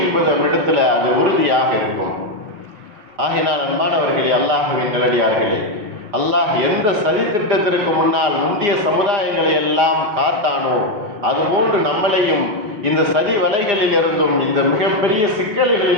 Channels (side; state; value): left; late; 4.9 ms